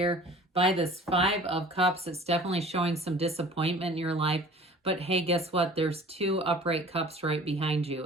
by this Five of Cups. It's definitely showing some disappointment in your life. But hey, guess what? There's two upright cups right behind you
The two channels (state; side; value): normal; both; correlation 0.46